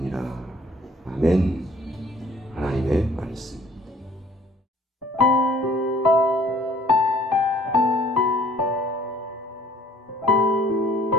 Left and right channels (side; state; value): both; normal; correlation 0.56